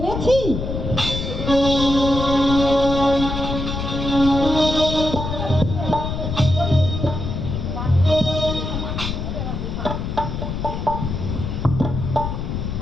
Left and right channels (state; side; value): noise; left; rumble, 4 dB below the sound